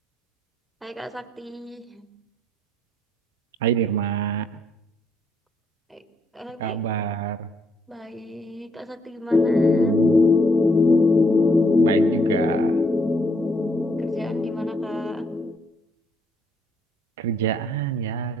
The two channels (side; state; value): both; normal; correlation 0.72